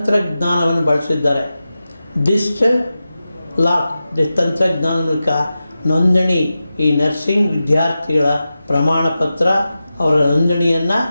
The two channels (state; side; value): inverted; both; correlation -0.93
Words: ಬಳಸಿದ್ದಾರೆ. ಡಿಜಿಟಲ್ ಲಾಕ್ ತಂತ್ರಜ್ಞಾನದ ಮೂಲಕ ನೋಂದಣಿ, ಈ ನರ್ಸಿಂಗ್ ವಿದ್ಯಾರ್ಥಿಗಳ ಪ್ರಮಾಣ ಪತ್ರ ಅವರ ನೋಂದಣಿಯನ್ನು